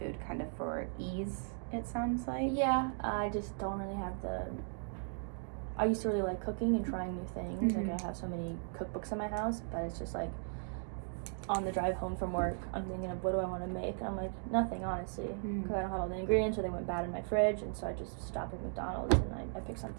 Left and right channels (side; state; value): left; silent; 53 dB below the other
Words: kind of for ease, it sounds like. Yeah, I just don't really have I used to really like cooking and trying new things. Like I have so many cookbooks in my house, but it's just like on the drive home from work, I'm thinking of what do I want to make, and I'm like, nothing, honestly, because I don't have all the ingredients or they went bad in my fridge, and so I just stopped at McDonald's and I picked